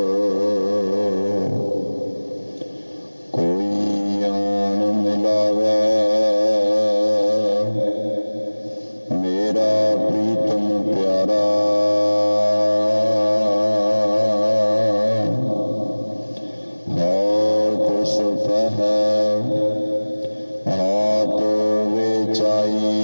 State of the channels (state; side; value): inverted; both; correlation -1.00